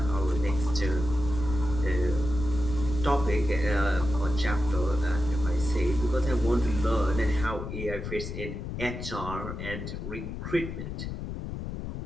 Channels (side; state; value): left; noise; rumble, 6 dB below the sound